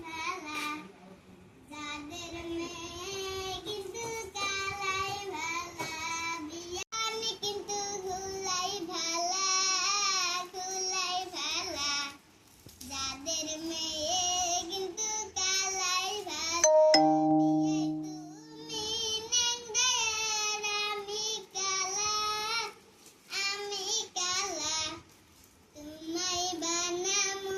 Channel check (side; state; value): both; identical; correlation 1.00